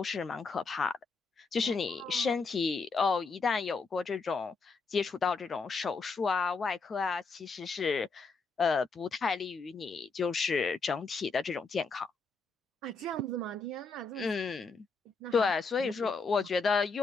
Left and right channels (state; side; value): quieter; right; 4.3 dB